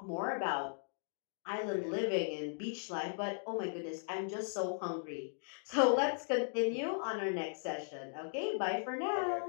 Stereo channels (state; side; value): silent; right; digital silence